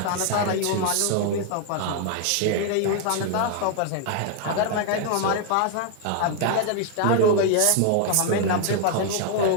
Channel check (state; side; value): different; both; correlation 0.00